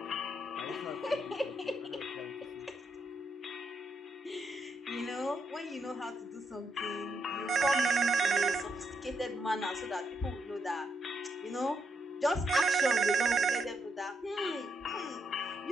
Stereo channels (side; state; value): both; normal; correlation 0.78